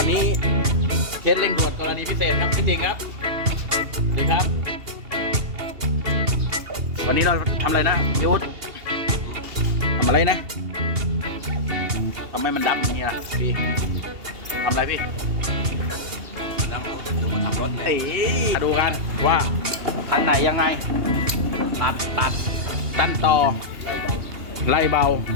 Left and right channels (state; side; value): late; left; 2.8 ms